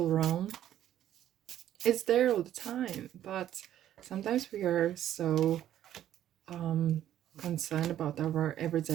realm. It's there all the time, but sometimes we are so concerned about our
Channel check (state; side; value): quieter; left; 11.6 dB